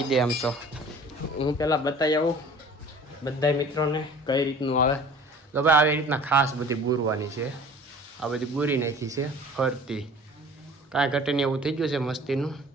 દે આમ તો હું પહેલાં બતાવી આવું બધા મિત્રોને કઈ રીતનું આવે તો ભાઈ આવી રીતના ખાસ બધી બુરવાની છે. આ બધી બુરી નાખી છે ફરતી કાંઈ ઘટે નહીં એવું થઈ ગયું છે મસ્તીનું.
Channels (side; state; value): both; normal; correlation 0.46